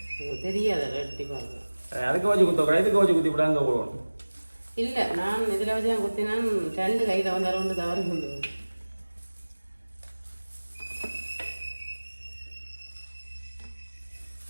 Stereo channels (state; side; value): inverted; both; correlation -1.00